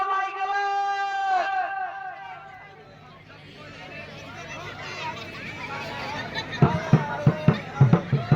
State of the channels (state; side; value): identical; both; correlation 1.00